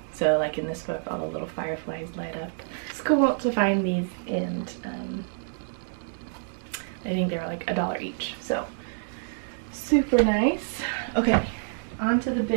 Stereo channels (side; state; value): left; silent; digital silence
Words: So like in this book, all the little fireflies light up. It's cool to find these, and I think they were like $1 each, so super nice. Okay, on to the